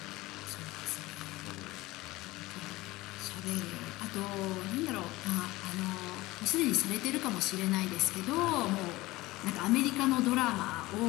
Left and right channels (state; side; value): quieter; right; 19.6 dB